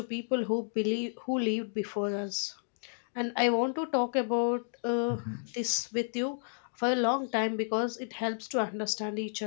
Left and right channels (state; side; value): silent; right; digital silence